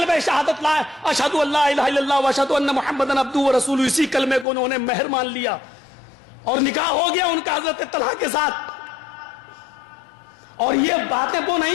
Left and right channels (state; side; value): drops out; right; at 4.5 s